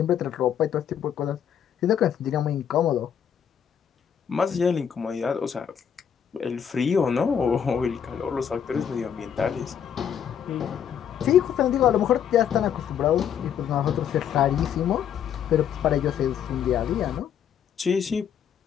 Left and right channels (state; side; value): quieter; right; 8.5 dB